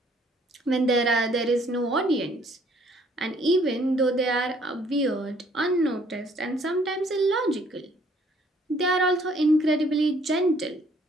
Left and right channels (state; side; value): normal; both; correlation 0.62